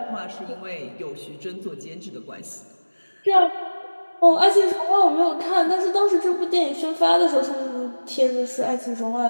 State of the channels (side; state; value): both; inverted; correlation -1.00